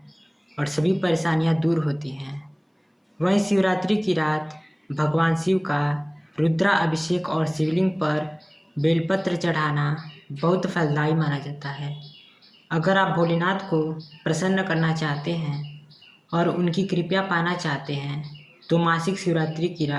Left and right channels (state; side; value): identical; both; correlation 1.00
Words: और सभी परेशानियां दूर होती हैं। वहीं शिवरात्रि की रात भगवान शिव का रुद्रा अभिषेक और शिवलिंग पर बेलपत्र चढ़ाना बहुत फलदायी माना जाता है। अगर आप भोलेनाथ को प्रसन्न करना चाहते हैं और उनकी कृपा पाना चाहते हैं तो मासिक शिवरात्रि की